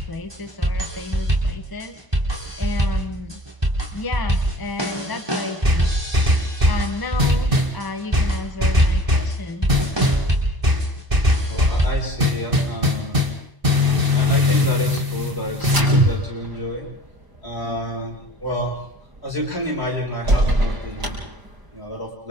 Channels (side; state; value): left; late; 1.0 ms